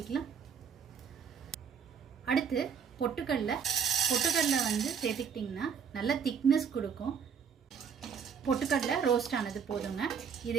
அடுத்து பொட்டுக்கடலை சேர்த்துக்கிட்டிங்கன்னா நல்ல திக்னஸ் கொடுக்கும். பொட்டுக்கடலை ரோஸ்ட் ஆனது போதுங்க.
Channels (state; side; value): quieter; left; 6.9 dB